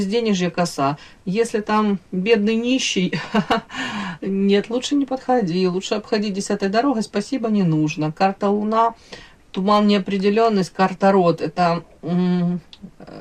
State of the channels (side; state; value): both; identical; correlation 1.00